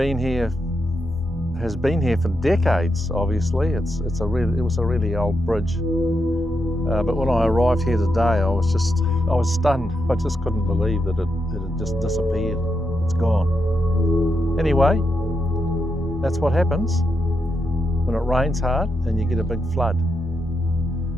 here for decades. Obviously, it was a really old bridge. But when I arrived here today, I was stunned. I just couldn't believe that it had just disappeared. It's gone. Anyway, that's what happens when it rains hard and you get a big flood.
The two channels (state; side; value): normal; both; correlation 0.83